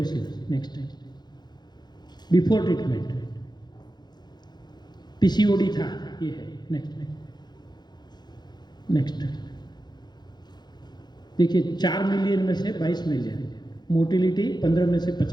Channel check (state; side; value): late; right; 0.21 ms